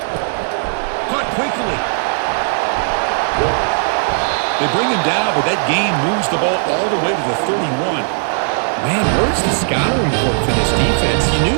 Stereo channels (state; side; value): silent; left; 65 dB below the other